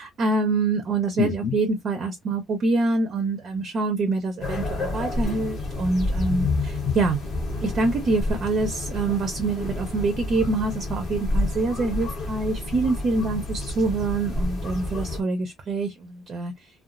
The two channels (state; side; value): normal; both; correlation 0.61